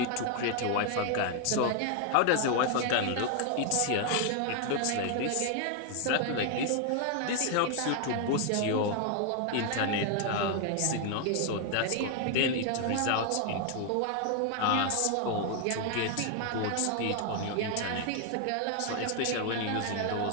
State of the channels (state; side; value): different; both; correlation 0.00